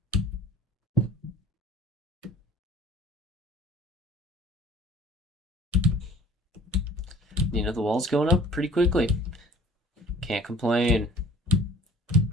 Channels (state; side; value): normal; both; correlation 0.51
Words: You know, the wall's going up pretty quickly. Can't complain.